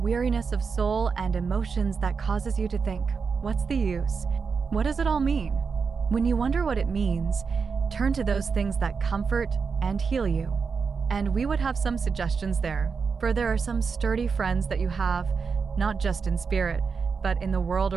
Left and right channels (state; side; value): quieter; left; 5.4 dB